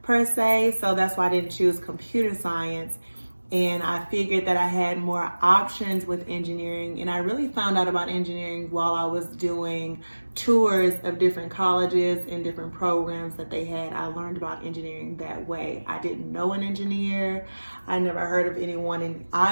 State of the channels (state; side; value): inverted; both; correlation -1.00